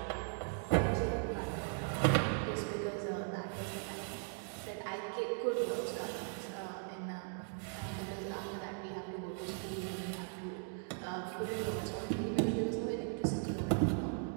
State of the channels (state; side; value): silent; left; 52 dB below the other